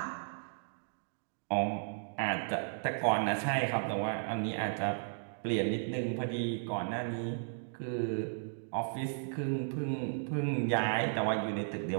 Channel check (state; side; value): silent; left; digital silence